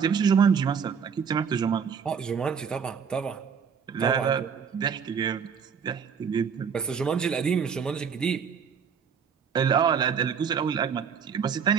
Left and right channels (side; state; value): left; quieter; 6.7 dB